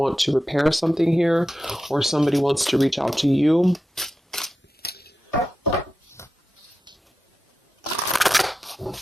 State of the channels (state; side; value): normal; both; correlation 0.91